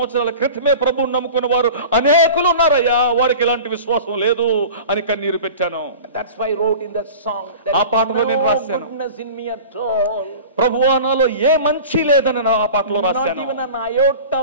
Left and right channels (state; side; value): inverted; both; correlation -0.38